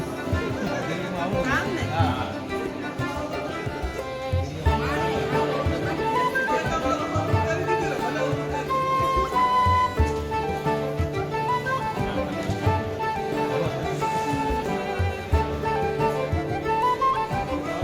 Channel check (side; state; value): both; identical; correlation 1.00